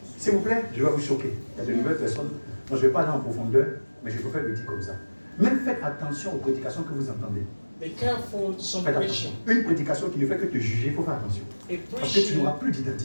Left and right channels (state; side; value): inverted; both; correlation -1.00